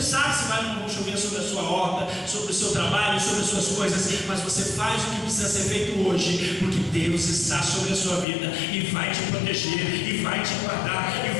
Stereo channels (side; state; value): right; drops out; at 8.2 s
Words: sabe se vai ou não vai chover sobre a sua horta, sobre o seu trabalho, sobre as suas coisas, mas você faz o que precisa ser feito hoje, porque Deus está sobre a sua vida e vai te proteger, e vai te guardar,